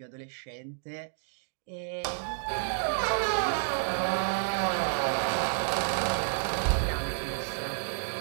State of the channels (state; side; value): silent; left; digital silence